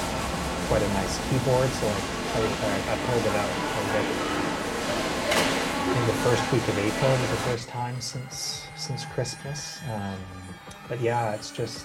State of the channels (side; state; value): both; identical; correlation 1.00